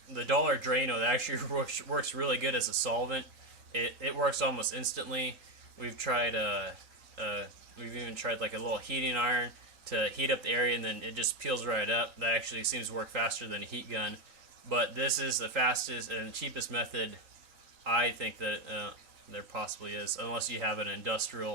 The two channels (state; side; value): late; left; 3.8 ms